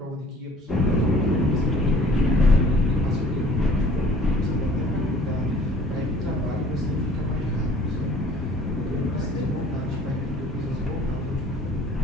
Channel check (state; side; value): normal; both; correlation 0.53